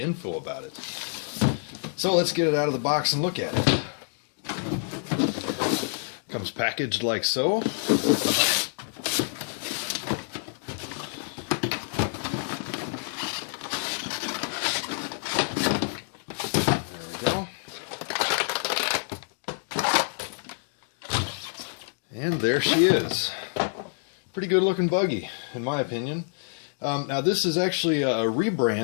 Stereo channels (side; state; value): right; silent; digital silence